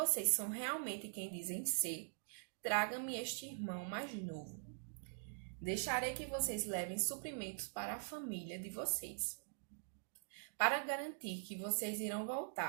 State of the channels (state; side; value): silent; left; digital silence